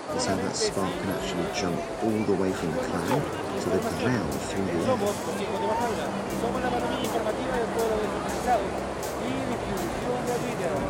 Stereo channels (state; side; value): identical; both; correlation 1.00